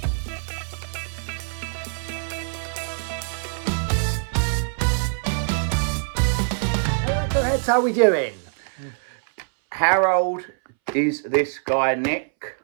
How are we doing? How old is this guy, Nick?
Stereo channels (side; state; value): left; silent; 61 dB below the other